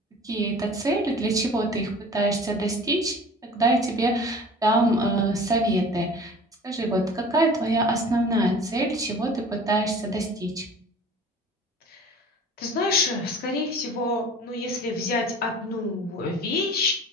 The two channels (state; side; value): normal; both; correlation 0.43